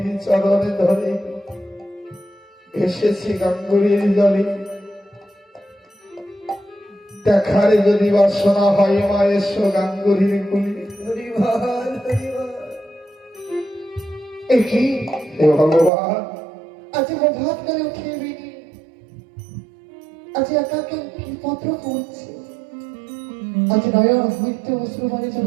চরণে ধরে এসেছি গাঙ্গুরির জলে। দেখার যদি বাসনা হয় মা এসো গাঙ্গুরির কুলি। হে ভগবান, আজ প্রভাত করে উঠে বিনি, আজ একা কি পত্র পড়ছে, আজ নয়ন হইতে অশ্রু মানে যেন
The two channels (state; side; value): drops out; left; at 15.9 s